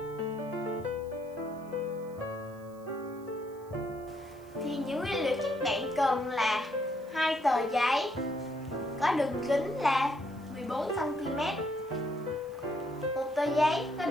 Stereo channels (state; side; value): noise; right; hiss, 28 dB below the sound